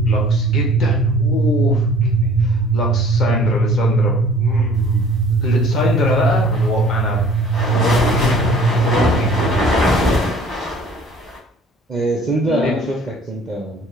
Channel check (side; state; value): both; normal; correlation 0.51